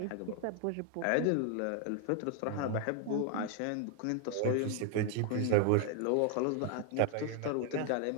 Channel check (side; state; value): both; different; correlation 0.00